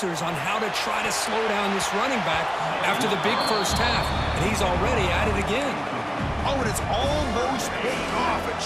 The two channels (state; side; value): identical; both; correlation 1.00